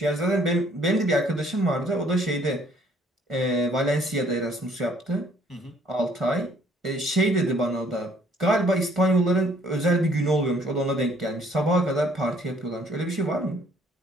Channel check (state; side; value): normal; both; correlation 0.61